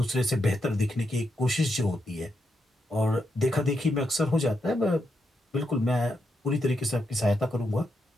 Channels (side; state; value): both; normal; correlation 0.82